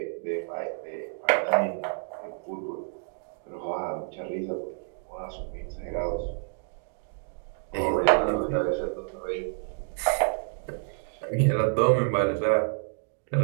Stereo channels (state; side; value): silent; left; digital silence